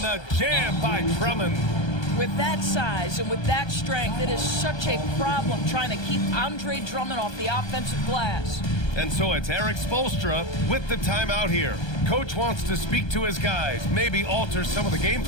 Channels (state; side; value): late; right; 1.3 ms